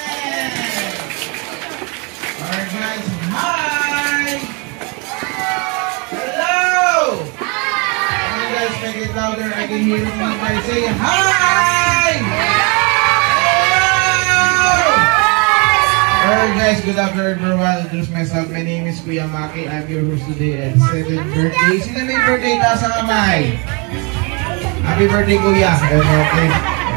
Alright, guys. Hi! Hello! Hi! You guys make it louder. I can hear you guys say hi! Alright guys, good afternoon everyone. I'll introduce myself. My name is Kuya Maki. I'm your host today at 7th birthday. Sino may birthday? Taas ang kamay. Happy birthday Kuya. Okay.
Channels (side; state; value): left; quieter; 32.0 dB